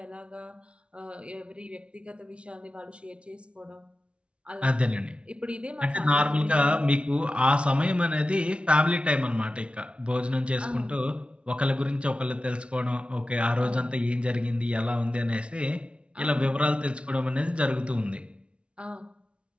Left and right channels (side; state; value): left; late; 0.059 ms